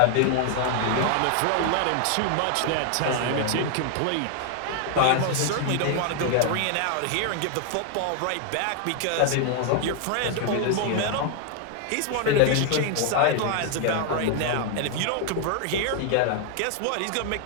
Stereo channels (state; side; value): different; both; correlation 0.00